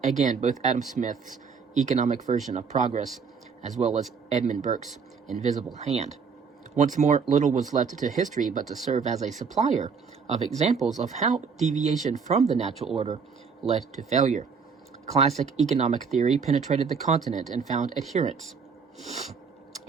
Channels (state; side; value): quieter; left; 5.7 dB